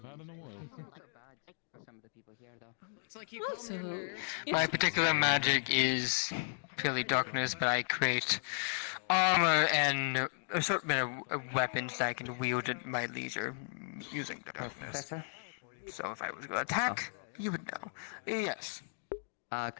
had in the world. Some of the people here, though. It's like you Also, My particular magic is purely darkness, but I create armor and assortment of weapons that I can wield at my leisure using darkness. Professor? So if I was going to attack, you would know. Yes.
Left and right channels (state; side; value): silent; right; digital silence